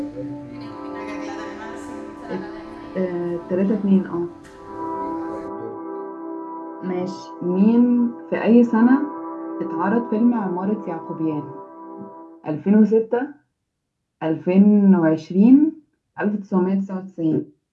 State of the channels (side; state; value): both; identical; correlation 1.00